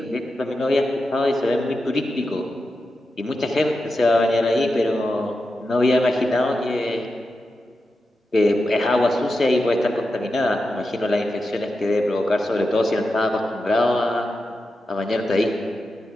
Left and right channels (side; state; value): both; normal; correlation 0.90